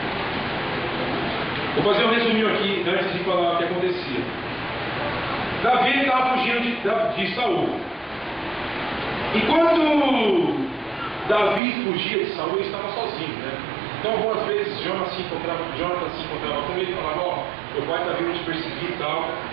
Vou fazer um resuminho aqui antes de falar o que acontecia. Davi estava fugindo de Saul. Enquanto Davi fugia de Saul, ele estava sozinho, né? Então algumas vezes Jonathan se encontrava com ele e falava, ó, meu pai está vindo te perseguir e tal.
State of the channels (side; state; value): left; drops out; at 11.6 s